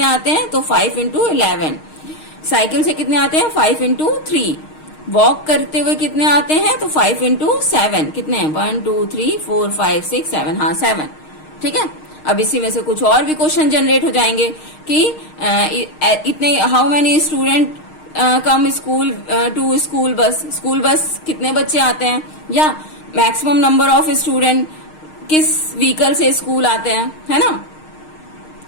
आते हैं, तो 5 इंटू 11। साइकिल से कितने आते हैं, 5 इंटू 3। वॉक करते हुए कितने आते हैं, तो 5 इंटू 7, कितने हैं, 1, 2, 3, 4, 5, 6, 7, हाँ 7। ठीक है, अब इसी में से कुछ और भी क्वेश्चन जनरेट हो जाएंगे कि इतने how many student come school to school bus कितने बच्चे आते हैं, या मैक्सिमम नंबर ऑफ स्टूडेंट किस व्हीकल से स्कूल आते हैं, है ना,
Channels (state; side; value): late; right; 6.5 ms